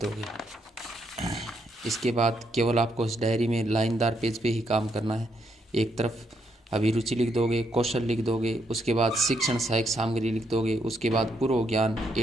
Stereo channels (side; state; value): both; normal; correlation 0.76